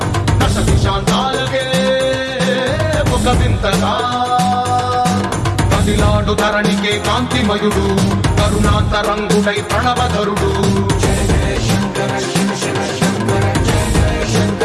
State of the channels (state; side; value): identical; both; correlation 1.00